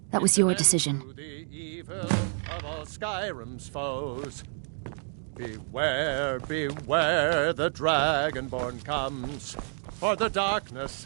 that was your decision. Skyrim's foes. Beware, beware, the Dragonborn comes, for the darkness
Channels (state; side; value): silent; left; 59 dB below the other